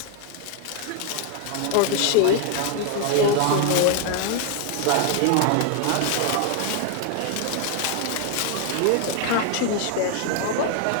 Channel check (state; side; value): different; both; correlation 0.01